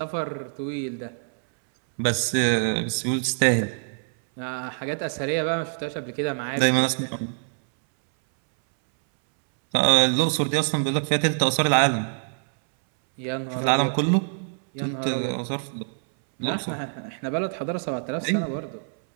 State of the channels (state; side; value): silent; left; 62 dB below the other